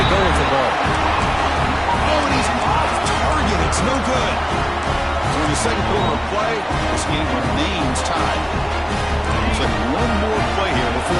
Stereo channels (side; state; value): both; identical; correlation 1.00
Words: go with the ball. Oh, and he's off target. It's no good. So in the second quarter of play, this game remains tied. Looks like one more play here